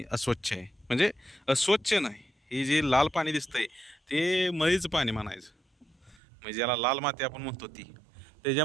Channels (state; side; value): drops out; left; at 6.2 s